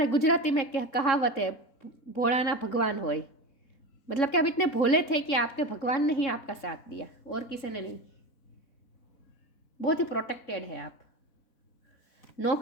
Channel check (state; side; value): late; right; 3.7 ms